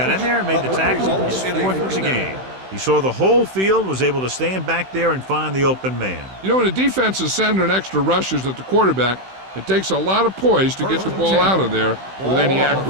in there, made the tackle. His 4th of the game. He saw the whole field, was able to stand back there and find the open man. You know, when a defense is sending extra rushers at the quarterback, it takes a lot of poise to get the ball out of there with any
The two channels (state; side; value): late; left; 16 ms